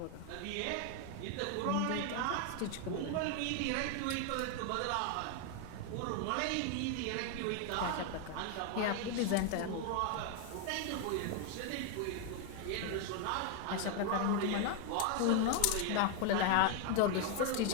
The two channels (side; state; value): both; different; correlation 0.01